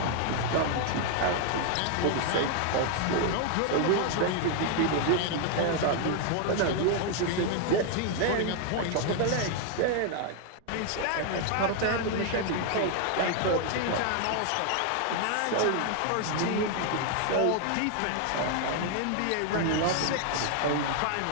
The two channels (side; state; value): both; different; correlation 0.00